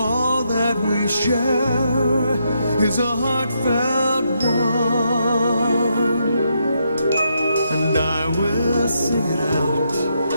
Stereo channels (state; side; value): inverted; both; correlation -0.79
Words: that we share is a heartfelt one, and I will sing it out